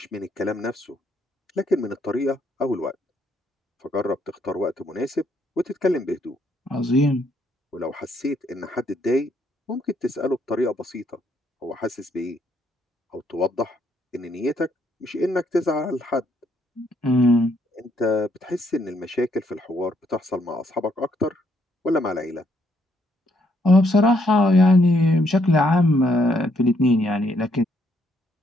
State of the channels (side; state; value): both; normal; correlation 0.71